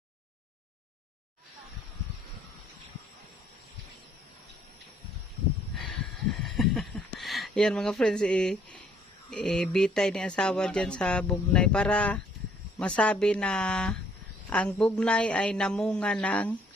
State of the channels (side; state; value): both; normal; correlation 0.63